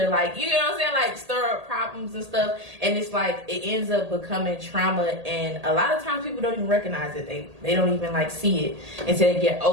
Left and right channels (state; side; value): late; left; 1.8 ms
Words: like, you know what I'm saying, like stir up problems and stuff, and it's like it ends up becoming trauma, and a lot of times people don't even recognize it. They don't even like see it until they get